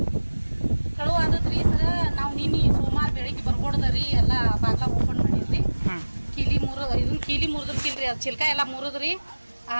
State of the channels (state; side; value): inverted; both; correlation -1.00